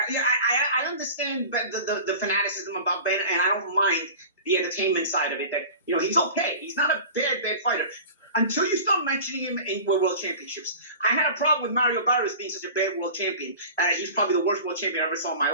yeah, I understand the fanaticism about Ben, and I don't mind the entertainment side of it. That he's okay. He's not a bad fighter. Until you start mentioning him in world championships. I had a problem with Mario Barrios being such a bad world champion. He's probably the worst world champion I ever saw in my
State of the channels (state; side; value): inverted; both; correlation -0.37